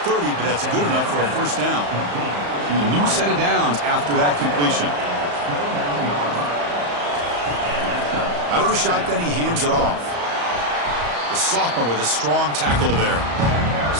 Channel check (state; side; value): late; left; 34 ms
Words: 30, but that's good enough for a first down. And a new set of downs after that completion. Out of the shotgun, he hands it off. The sophomore with a strong tackle there.